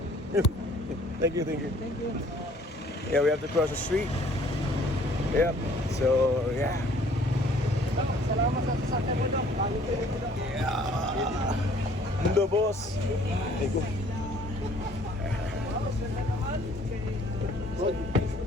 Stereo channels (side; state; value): both; normal; correlation 0.57